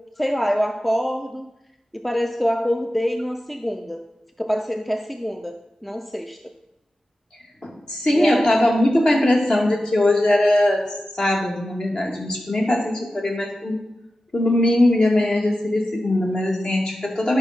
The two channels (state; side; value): normal; both; correlation 0.93